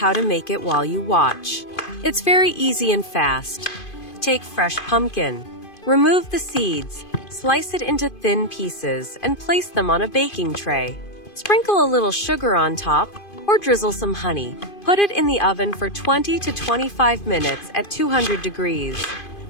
to make it while you watch. It's very easy and fast. Take fresh pumpkin. Remove the seeds, slice it into thin pieces, and place them on a baking tray. Sprinkle a little sugar on top, or drizzle some honey. Put it in the oven for 20 to 25 minutes at 200 degrees.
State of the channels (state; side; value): late; right; 2.5 ms